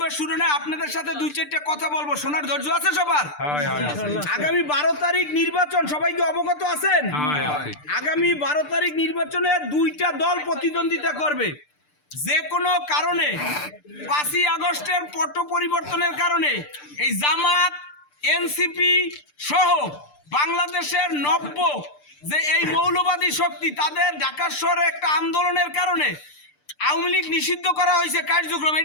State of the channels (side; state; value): right; late; 6.7 ms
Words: শুরু নয়, আপনাদের সাথে দুই চারটা কথা বলবো। শোনার ধৈর্য আছে সবার? আগামী 12 তারিখ নির্বাচন, সবাইকে অবগত আছেন? আগামী 12 তারিখ নির্বাচনে দুইটা দল প্রতিদ্বন্দ্বিতা করবে। যে কোনো কারণে 5ই আগস্টের পট পরিবর্তনের কারণে এই জামাত, এনসিপি সহ বাংলাদেশের নব্য যে এই মৌলবাদী শক্তি, তাদের ঢাকা শহরে একটা আন্দোলনের কারণে আওয়ামী লীগ নিষিদ্ধ করা হয়েছে কার্যক্রম।